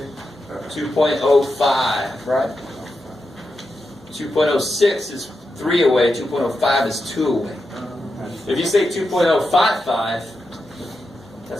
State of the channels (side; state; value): both; normal; correlation 0.88